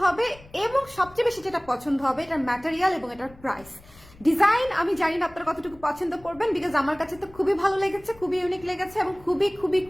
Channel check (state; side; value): noise; left; rumble, 23 dB below the sound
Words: হবে এবং সবচেয়ে বেশি যেটা পছন্দ হবে এটার ম্যাটেরিয়াল এবং এটার প্রাইস। ডিজাইন আমি জানি না আপনারা কতটুকু পছন্দ করবেন, বিকজ আমার কাছে তো খুবই ভালো লেগেছে, খুবই ইউনিক লেগেছে এবং খুবই খুবই